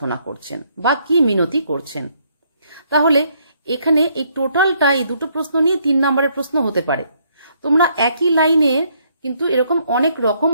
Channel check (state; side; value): inverted; both; correlation -0.70